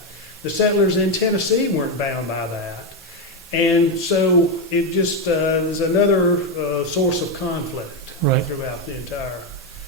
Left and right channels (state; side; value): normal; both; correlation 0.07